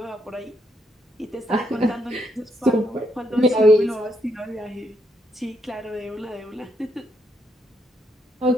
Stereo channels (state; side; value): normal; both; correlation 0.77